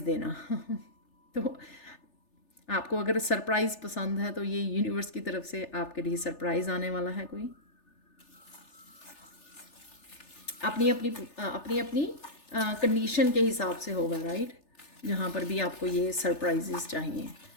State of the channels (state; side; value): late; right; 3.4 ms